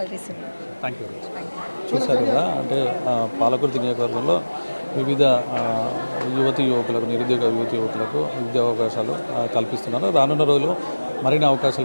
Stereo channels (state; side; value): inverted; both; correlation -1.00